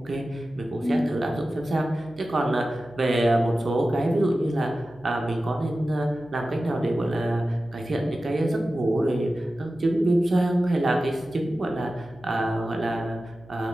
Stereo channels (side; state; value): right; noise; hum, 24 dB below the sound